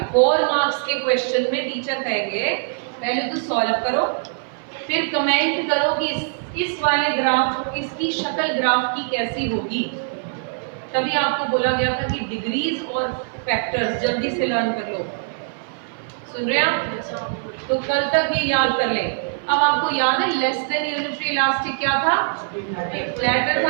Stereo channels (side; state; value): left; silent; 58 dB below the other